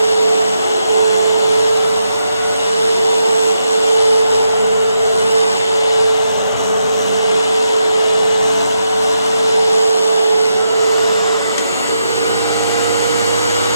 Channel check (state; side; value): inverted; both; correlation -0.83